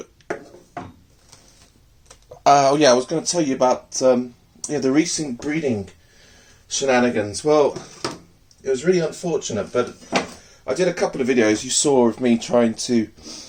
oh yeah, I was going to tell you about the recent breeding shenanigans. Well, it was really unfortunate, but I did a couple of videos you saw of me trying to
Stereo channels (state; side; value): identical; both; correlation 1.00